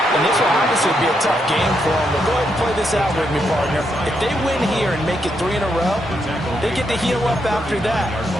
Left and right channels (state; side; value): normal; both; correlation 0.79